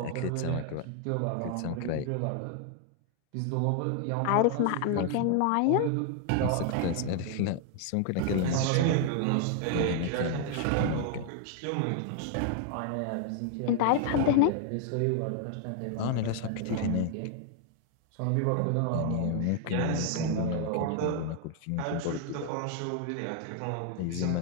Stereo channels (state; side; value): different; both; correlation 0.00